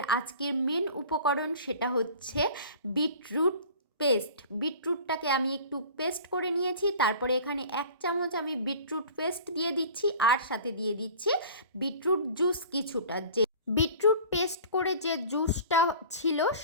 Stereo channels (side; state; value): both; inverted; correlation -0.43